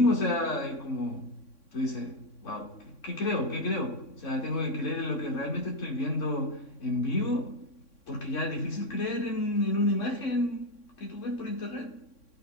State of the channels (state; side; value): late; right; 3.6 ms